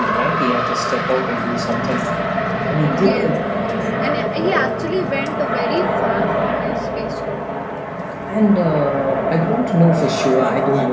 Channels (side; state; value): both; identical; correlation 1.00